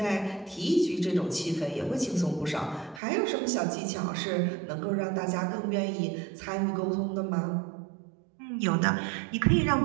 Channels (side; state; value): left; drops out; at 3.0 s